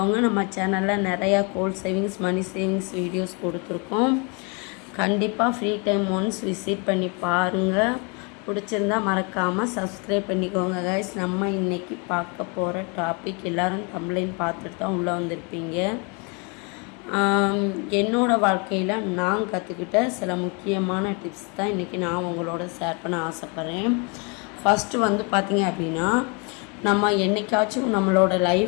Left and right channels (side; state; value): right; quieter; 33.1 dB